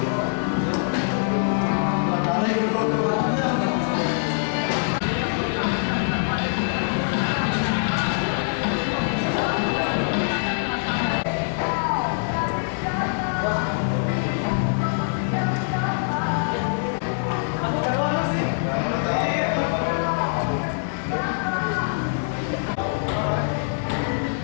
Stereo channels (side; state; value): right; silent; 63 dB below the other